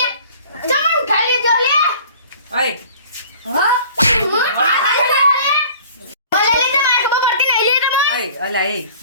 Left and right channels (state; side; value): inverted; both; correlation -0.48